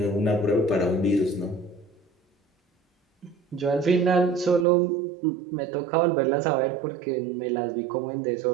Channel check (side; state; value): left; drops out; at 4.7 s